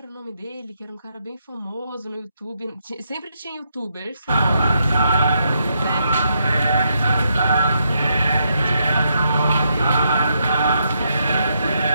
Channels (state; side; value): inverted; both; correlation -0.79